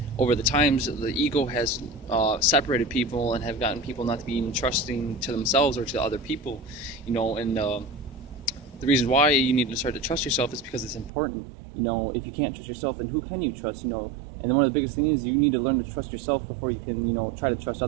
over the times, the ego has separated people and have gotten people not to be even trusting to themselves or to other people, and the reason why you need to start to trust yourself is because it's important. If you can't trust yourself, then who can you trust? And then one of the biggest things is you need to learn to trust yourself before you can, try to trust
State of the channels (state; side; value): drops out; left; at 11.1 s